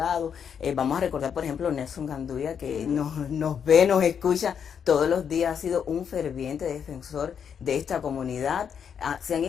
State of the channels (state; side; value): quieter; right; 7.6 dB